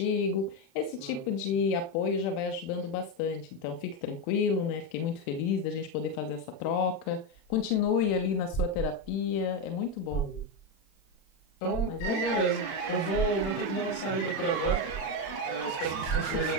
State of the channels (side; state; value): right; late; 36 ms